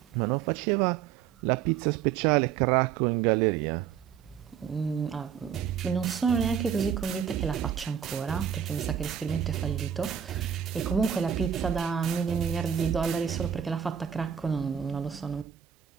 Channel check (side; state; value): left; quieter; 8.5 dB